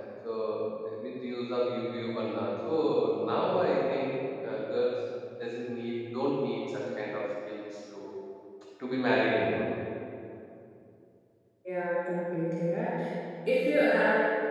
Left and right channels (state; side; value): identical; both; correlation 1.00